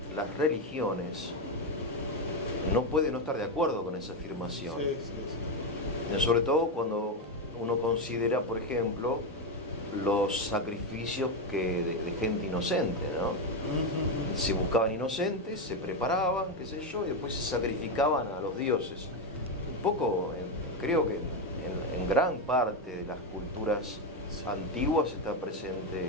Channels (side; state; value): both; normal; correlation 0.09